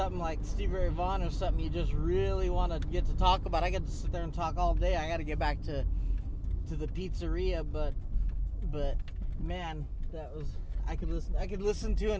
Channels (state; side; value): identical; both; correlation 1.00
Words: like Stevie Ray Vaughan or something you just really want to get to talk about, I get to sit there and talk all day. I got to get back to the pizzeria, but man, that was, I could listen to